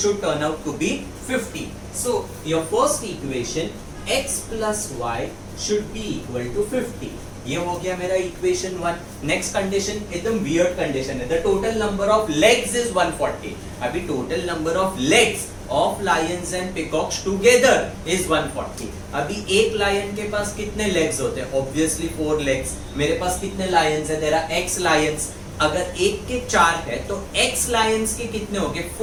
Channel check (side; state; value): both; identical; correlation 1.00